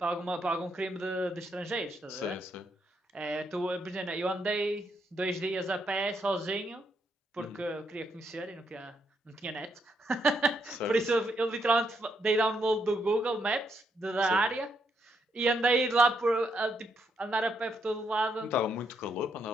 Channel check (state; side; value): normal; both; correlation 0.77